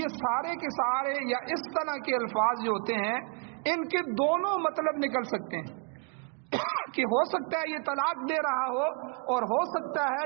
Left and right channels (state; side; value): quieter; left; 35.0 dB